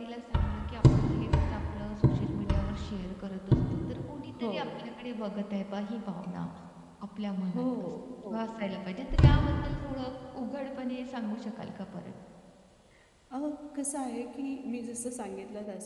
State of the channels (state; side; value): identical; both; correlation 1.00